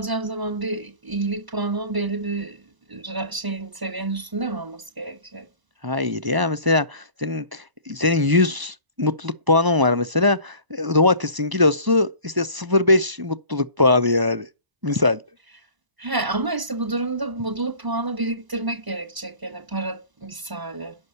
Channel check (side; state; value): left; late; 1.0 ms